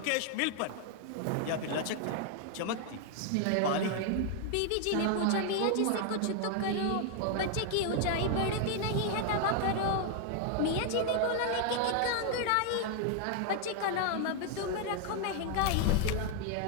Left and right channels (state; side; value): different; both; correlation 0.00